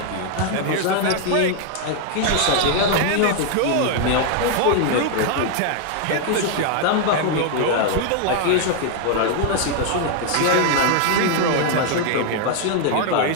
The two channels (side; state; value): both; different; correlation 0.00